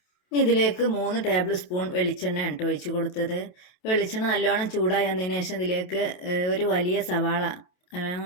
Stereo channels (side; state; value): right; late; 28 ms